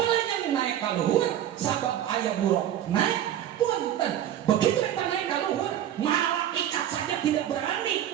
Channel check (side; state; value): left; quieter; 11.2 dB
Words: naik ka luhur sabab aya buruk naik. Punten, begitu eta naik ka luhur, malaikat saja tidak